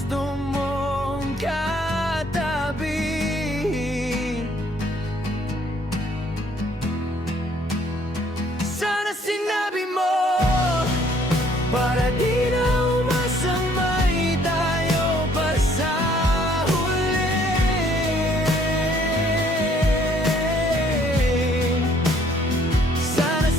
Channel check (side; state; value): both; normal; correlation 0.62